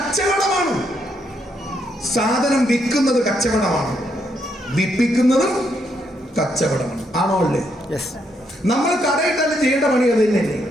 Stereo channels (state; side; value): normal; both; correlation 0.76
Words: സാധനം വിൽക്കുന്നത് കച്ചവടമാണ്, വിൽപ്പിക്കുന്നതും കച്ചവടമാണ്. ആണോ അല്ലേ? നമ്മൾ കടയിട്ടാലും ചെയ്യേണ്ട പണി അത് തന്നെയല്ലേ,